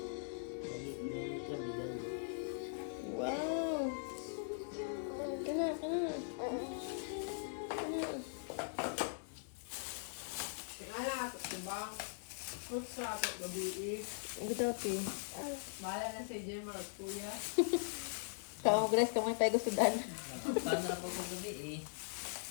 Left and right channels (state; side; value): silent; right; digital silence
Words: Wow! Kana. Kaya ako, diba? Fruits sa ako, gabi Bitaw, ti. Bahala na si Jay mga kuya. Tawang bless ka mga tayo sudan. Paano na po kung gabi eh?